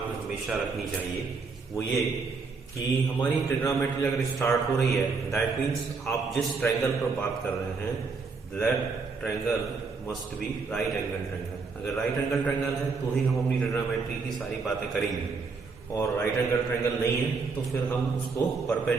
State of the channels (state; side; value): quieter; left; 4.6 dB